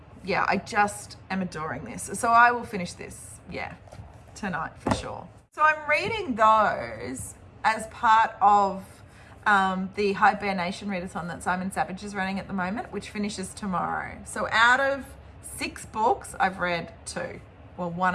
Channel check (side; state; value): both; identical; correlation 1.00